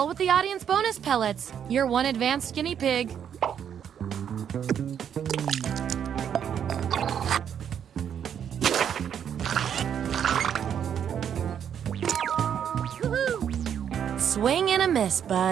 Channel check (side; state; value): left; quieter; 8.7 dB